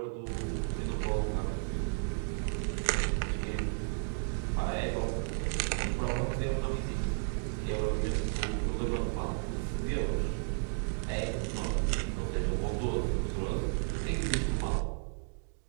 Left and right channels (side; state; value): left; silent; digital silence